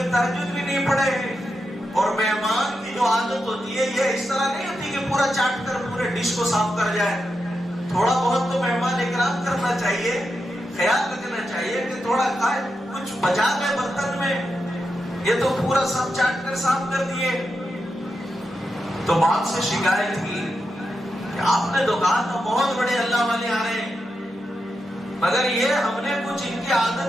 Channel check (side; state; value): both; normal; correlation 0.87